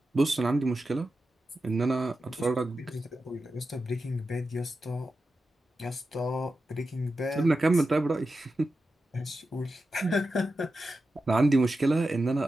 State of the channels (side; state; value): both; normal; correlation 0.91